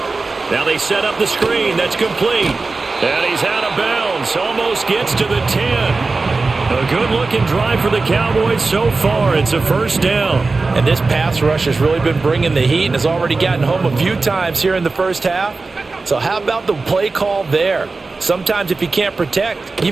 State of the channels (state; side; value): quieter; left; 3.8 dB